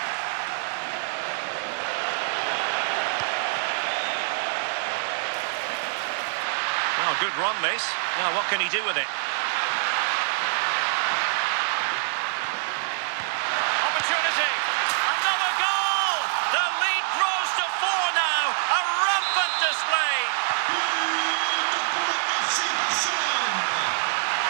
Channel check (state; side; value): silent; left; digital silence